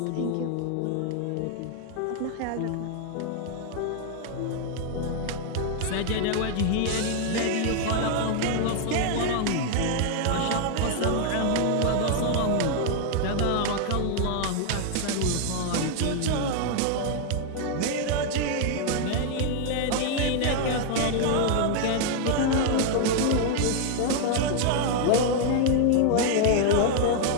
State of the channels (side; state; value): both; different; correlation 0.00